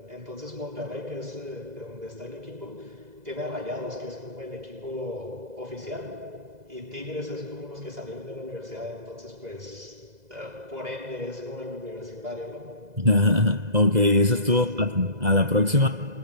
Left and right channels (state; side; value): late; left; 2.0 ms